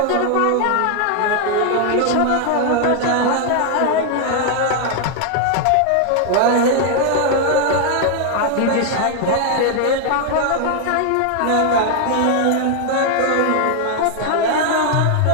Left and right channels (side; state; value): both; different; correlation 0.00